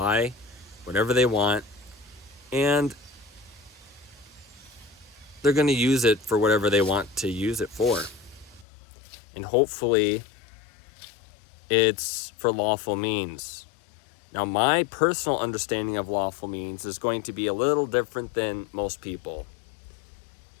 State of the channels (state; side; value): drops out; right; at 8.7 s